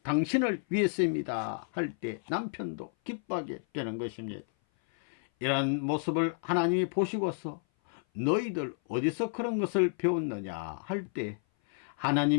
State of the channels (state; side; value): silent; right; 56 dB below the other